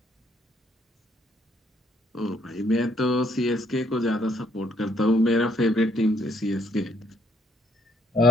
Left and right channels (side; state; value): both; normal; correlation 0.66